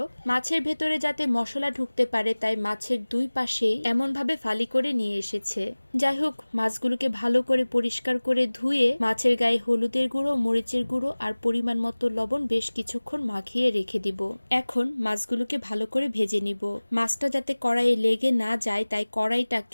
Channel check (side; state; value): both; inverted; correlation -1.00